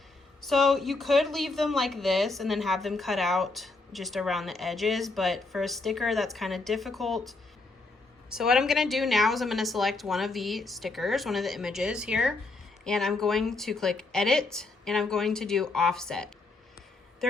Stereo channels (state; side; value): quieter; right; 3.4 dB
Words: So you could leave them like this and then have them cut out just around the edges, but for a sticker that's kind of difficult. So what I'm going to do now is I'm going to select one of the stickers, one of the images here, and I'm going to click edit, and I'm going to do offset.